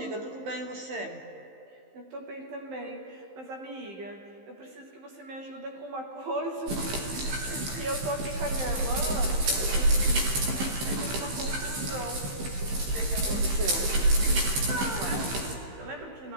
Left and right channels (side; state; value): left; late; 15 ms